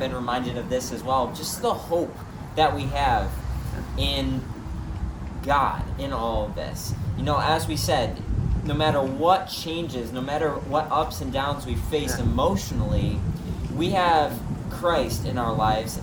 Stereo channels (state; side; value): identical; both; correlation 1.00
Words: reminded of this as well, just the hope that we have in God in all of this. You know, as we said, no matter what changes, no matter what ups and downs we face emotionally, we have Christ in our lives.